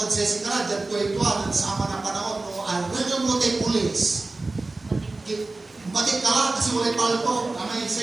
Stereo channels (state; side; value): quieter; left; 3.3 dB